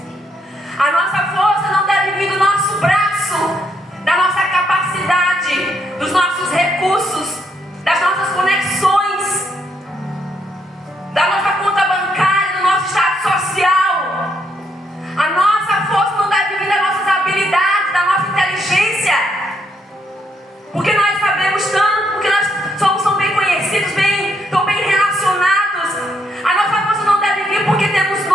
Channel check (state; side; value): normal; both; correlation 0.75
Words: A nossa força não deve vir do nosso braço, da nossa capacidade, dos nossos recursos, das nossas conexões, da nossa conta bancária, do nosso estado social. A nossa força não deve vir das nossas habilidades, da nossa inteligência, porque nós sabemos tanto, porque nós somos bem conhecidos, tão bem relacionados. A nossa força não deve vir porque temos